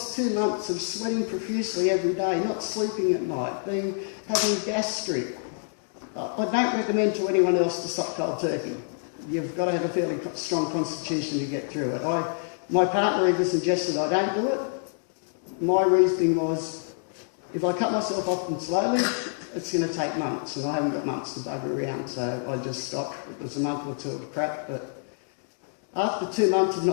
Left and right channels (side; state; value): right; silent; digital silence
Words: 2 months of sweating profusely every day, not sleeping at night, having gastric. I don't recommend to anyone else to stop cold turkey. You've got to have a fairly strong constitution to get through it. My partner even suggested I don't do it. My reasoning was, if I cut myself off them slowly, it's going to take months, and I haven't got months to bugger around, so I just stopped. It was a month or two of crap, but after 2 months of